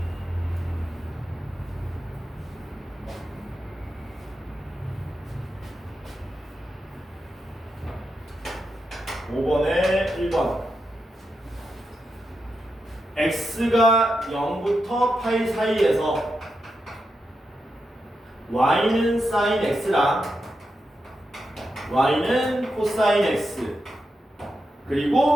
(5번에) 1번 x가 0부터 파이 사이에서 y는 sin x랑 y는 코사인 x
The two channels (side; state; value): both; normal; correlation 0.87